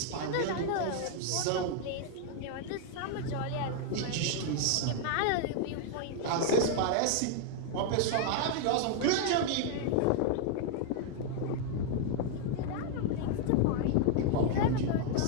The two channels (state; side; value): different; both; correlation 0.00